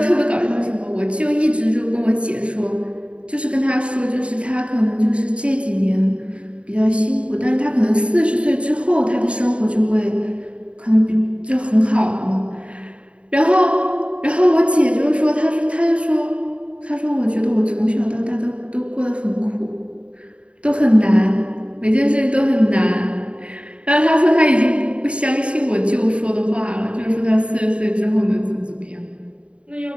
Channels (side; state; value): left; late; 0.060 ms